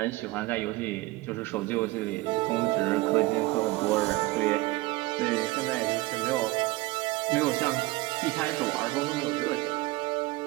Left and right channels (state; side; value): quieter; left; 20.4 dB